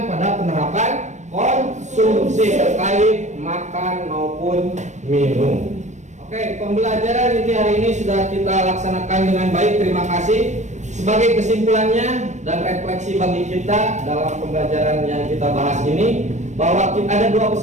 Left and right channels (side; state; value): left; late; 0.34 ms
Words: pada penerapan konsumsi terkait makan maupun minum. Oke, pembelajaran inti hari ini sudah kita laksanakan dengan baik. Terima kasih. Sebagai kesimpulannya dan refleksi bagi kita dalam pembelajaran yang kita bahas ini, bahwa ada 2